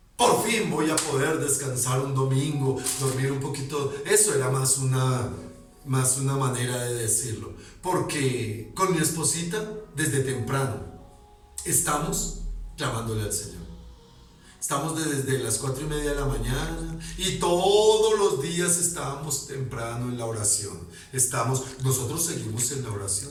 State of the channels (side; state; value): both; identical; correlation 1.00